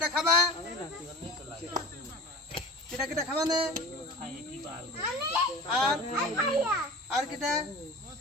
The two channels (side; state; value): both; normal; correlation 0.38